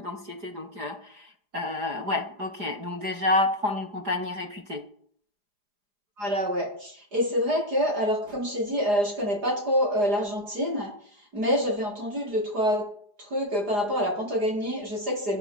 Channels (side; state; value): left; late; 4.9 ms